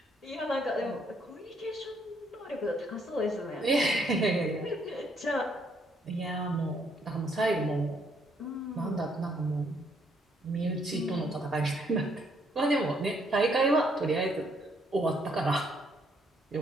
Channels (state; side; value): normal; both; correlation 0.70